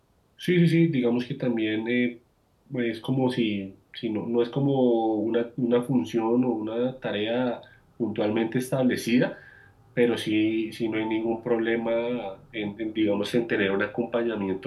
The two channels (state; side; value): identical; both; correlation 1.00